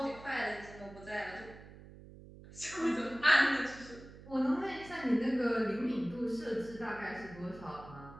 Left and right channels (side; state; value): right; noise; hum, 17 dB below the sound